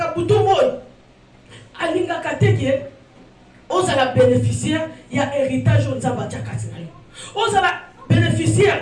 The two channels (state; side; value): identical; both; correlation 1.00